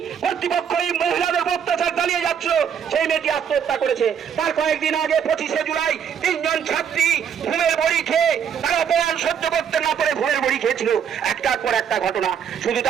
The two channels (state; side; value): quieter; left; 8.0 dB